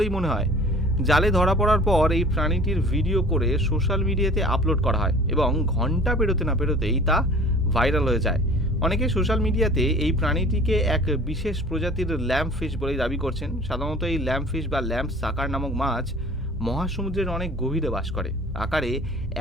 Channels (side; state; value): both; normal; correlation 0.46